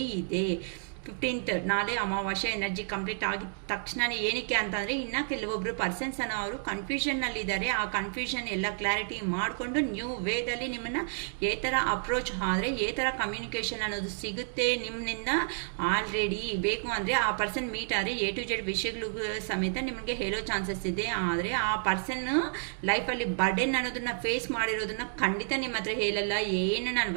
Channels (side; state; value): left; silent; digital silence